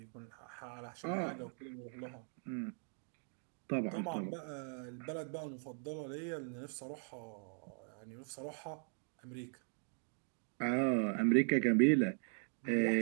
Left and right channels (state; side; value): silent; left; 51 dB below the other